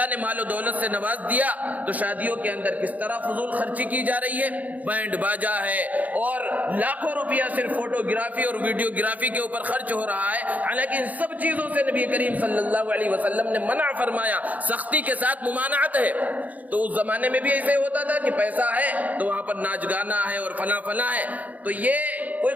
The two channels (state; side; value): late; left; 0.075 ms